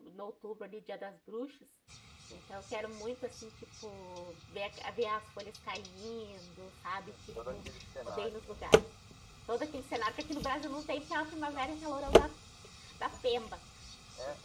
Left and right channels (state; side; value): identical; both; correlation 1.00